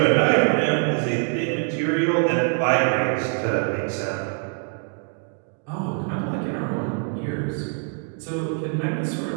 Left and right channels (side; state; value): left; quieter; 39.0 dB